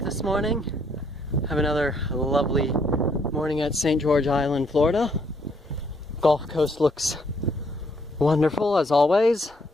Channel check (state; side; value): normal; both; correlation 0.69